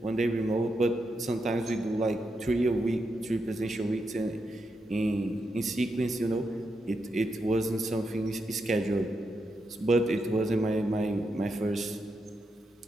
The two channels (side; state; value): both; normal; correlation 0.84